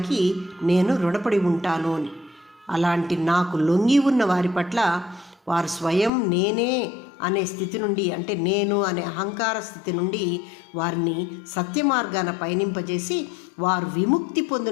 నేను రుణపడి ఉంటాను అని. అలాంటి నాకు లొంగి ఉన్న వారి పట్ల వారు స్వయం నేనే అనే స్థితి నుండి, అంటే నేను అనే అహంకార స్థితి నుండి వారిని సత్య మార్గాన పయనింపజేసి వారు విముక్తి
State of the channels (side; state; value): right; drops out; at 6.1 s